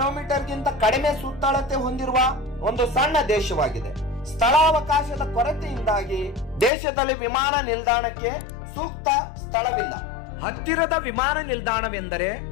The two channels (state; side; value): drops out; right; at 6.7 s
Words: ಕಡಿಮೆ ಸುತ್ತಳತೆ ಹೊಂದಿರುವ ಒಂದು ಸಣ್ಣ ದೇಶವಾಗಿದೆ. ಸ್ಥಳಾವಕಾಶದ ಕೊರತೆಯಿಂದಾಗಿ ದೇಶದಲ್ಲಿ ವಿಮಾನ ನಿಲ್ದಾಣಕ್ಕೆ ಸೂಕ್ತ ಸ್ಥಳವಿಲ್ಲ. ಹತ್ತಿರದ ವಿಮಾನ ನಿಲ್ದಾಣವೆಂದರೆ